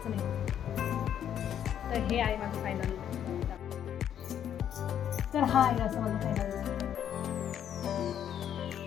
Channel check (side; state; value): right; quieter; 9.6 dB